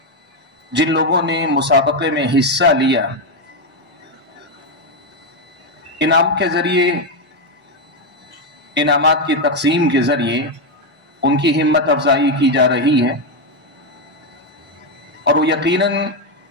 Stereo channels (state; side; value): normal; both; correlation 0.06